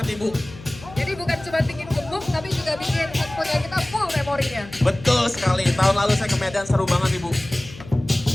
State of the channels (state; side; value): noise; left; hum, 17 dB below the sound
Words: Ibu. Jadi bukan cuma bikin gemuk, tapi juga bikin handphonenya kita full memorinya. Betul sekali, tahun lalu saya ke Medan seru banget Ibu.